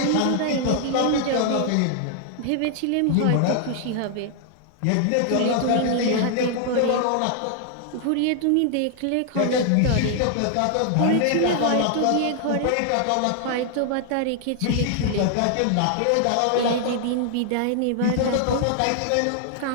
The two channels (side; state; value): both; different; correlation 0.00